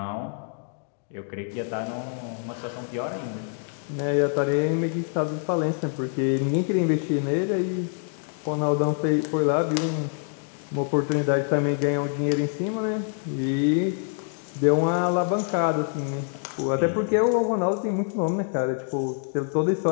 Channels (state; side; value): silent; right; 59 dB below the other